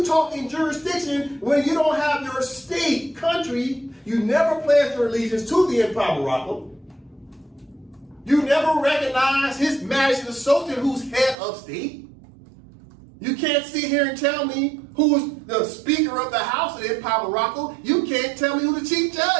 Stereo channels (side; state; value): left; drops out; at 11.4 s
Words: talking jurisdiction when you don't have your state, country? You never pledged your allegiance to the Empire of Morocco. You never recognize His Majesty the Sultan, who's head of state. You can't sit here and tell me who is the Speaker of the House of the Empire of Morocco. You can't tell me who the Chief